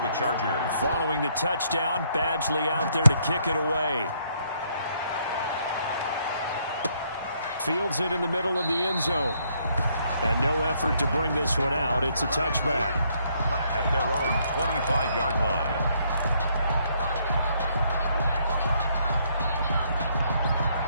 Chargers. Following the touchdown, Badgley out there to kick it away. Fields it in the middle of the end zone. And no effort to bring this one out. It's a touchback. At their own 25-yard line.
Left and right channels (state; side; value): inverted; both; correlation -0.70